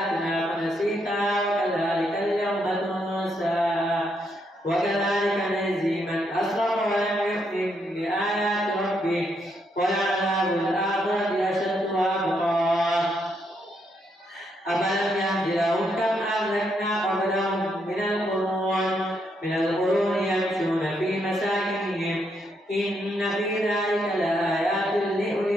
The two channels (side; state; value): both; normal; correlation 0.77